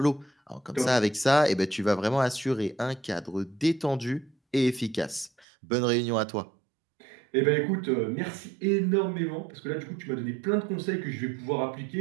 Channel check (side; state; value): left; drops out; at 5.5 s